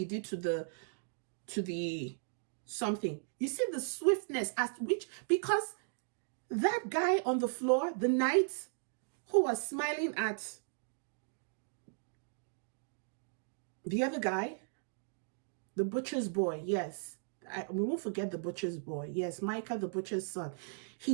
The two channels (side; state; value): left; silent; digital silence